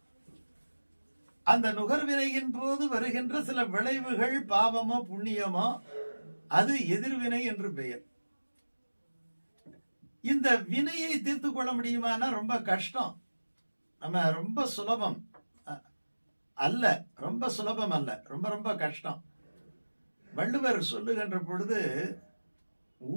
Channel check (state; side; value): inverted; both; correlation -1.00